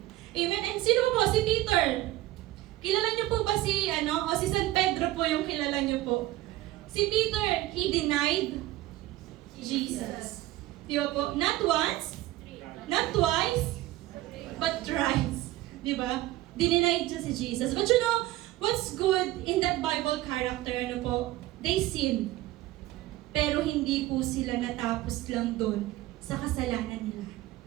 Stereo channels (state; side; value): quieter; left; 16.4 dB